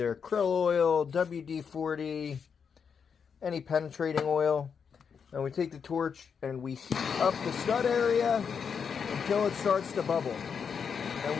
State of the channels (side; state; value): right; quieter; 6.6 dB